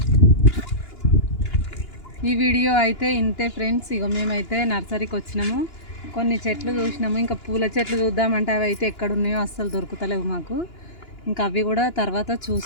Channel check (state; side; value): late; right; 2.9 ms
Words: ఈ వీడియో అయితే ఇంతే ఫ్రెండ్స్. ఇగో మేమైతే నర్సరీకి వచ్చినాము. కొన్ని చెట్లు చూసినాము, ఇంకా పూల చెట్లు చూద్దామంటే అవి అయితే ఎక్కడ ఉన్నాయో అస్సలు దొరుకుతలేవు మాకు. ఇంకా అవి కూడా తర్వాత